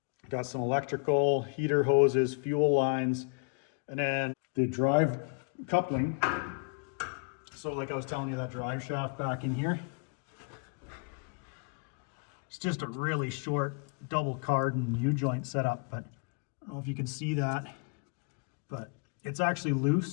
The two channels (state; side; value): quieter; right; 37.6 dB